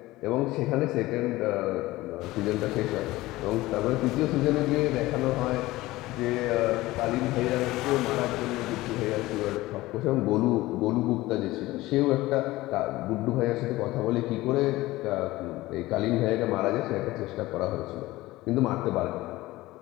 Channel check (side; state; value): right; quieter; 18.4 dB